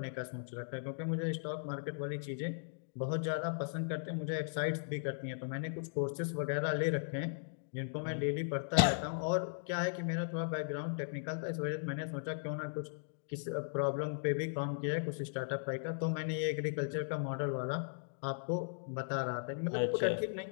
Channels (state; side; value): silent; right; digital silence